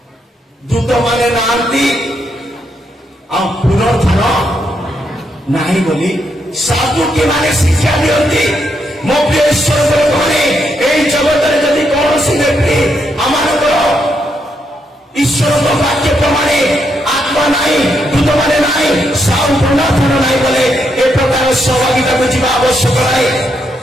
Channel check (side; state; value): both; normal; correlation 0.79